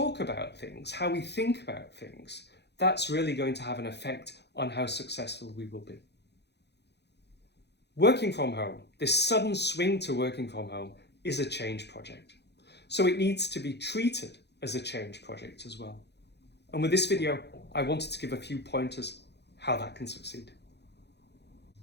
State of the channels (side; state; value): right; late; 0.49 ms